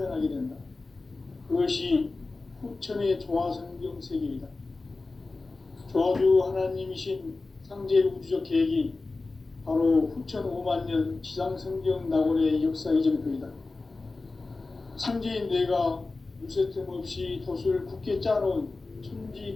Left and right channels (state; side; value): quieter; right; 3.5 dB